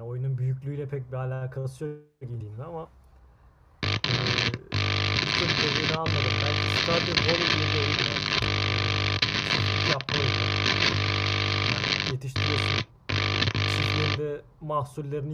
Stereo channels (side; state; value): both; identical; correlation 1.00